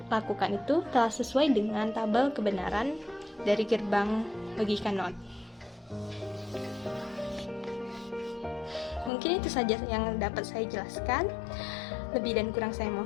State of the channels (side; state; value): right; drops out; at 9.1 s